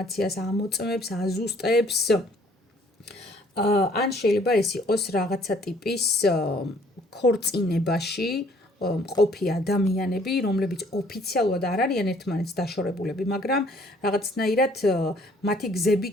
ამოწმებს, აზუსტებს, ან შეიძლება ეს იყოს რაღაცა ტიპის ქორწინებაში ყოფი ადამიანები, რომლებიც ოფიციალურად არ არიან ერთმანეთს დაშორებულები, მაგრამ რაღაცნაირად მათი გზები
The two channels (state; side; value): normal; both; correlation 0.60